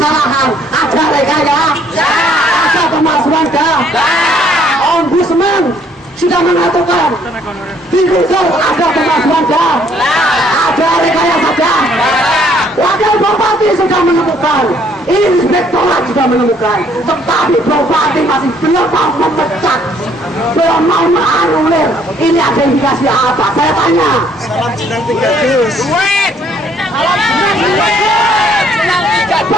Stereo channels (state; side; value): normal; both; correlation 0.64